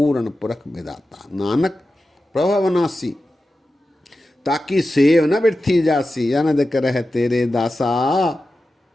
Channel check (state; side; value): normal; both; correlation 0.93